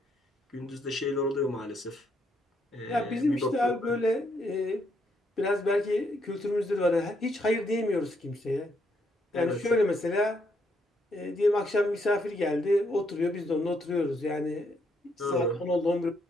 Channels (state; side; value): normal; both; correlation 0.75